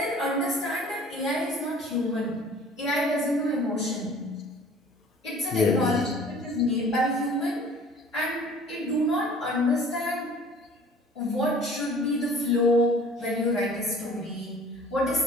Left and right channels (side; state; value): both; normal; correlation 0.49